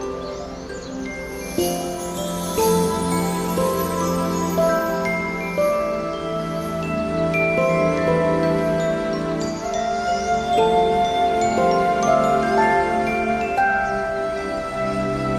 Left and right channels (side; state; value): both; identical; correlation 1.00